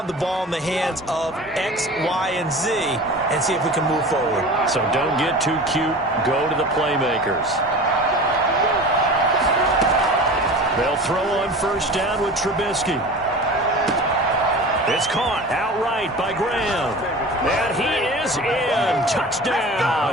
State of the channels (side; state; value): both; normal; correlation 0.36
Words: the ball in the hands of X, Y, and Z and see if we can move forward. So don't get too cute. Go to the playmakers. They'll throw on first down with Trubisky. It's caught outright by Graham. And he is in.